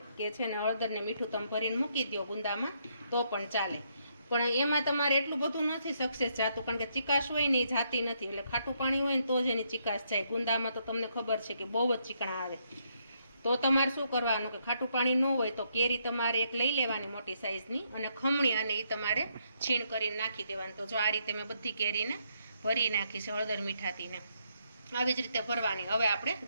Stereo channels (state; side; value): inverted; both; correlation -0.75